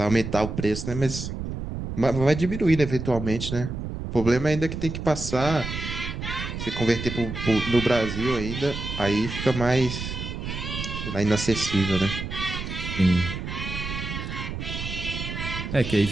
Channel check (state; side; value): noise; right; rumble, 6 dB below the sound